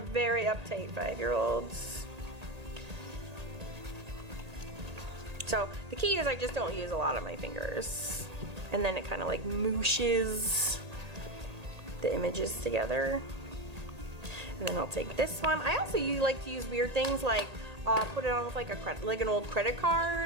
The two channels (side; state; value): left; late; 1.8 ms